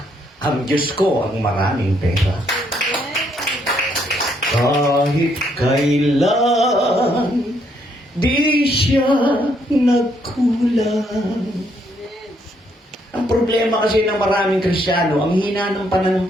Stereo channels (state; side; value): normal; both; correlation 0.72